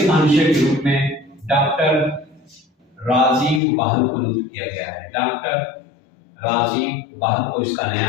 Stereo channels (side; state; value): right; drops out; at 3.6 s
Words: महानिदेशक के रूप में डॉक्टर राजीव बाहल को नियुक्त किया गया है। डॉक्टर राजीव बाहल को इसका नया